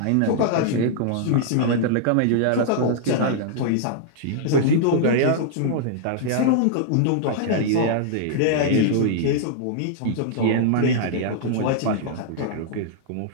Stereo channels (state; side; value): different; both; correlation -0.01